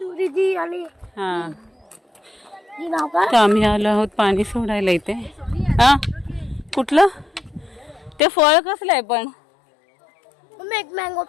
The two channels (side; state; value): right; drops out; at 8.2 s